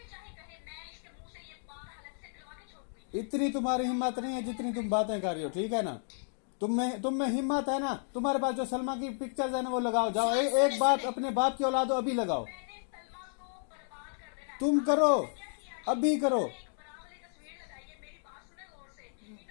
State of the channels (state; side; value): silent; right; digital silence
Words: चाहे कहे, मैं इसके मुंह से ये बात अलग से करवा के छोड़ूंगी। इतनी तुम्हारी हिम्मत नहीं है जितनी तुम बातें कर रही हो, ठीक है ना। तुम में हिम्मत है ना, तुम्हारे पास जो सलमा की पिक्चर्स है ना वो लगाओ, जाओ, एक बात अपने बाप की औलाद हो, अभी लगाओ, मैंने सलमा को बर्बाद कर देना है। तुम करो, अभी करो। एक बड़ा वाली तस्वीर लगाई है, मेरी बात सुने गौर से।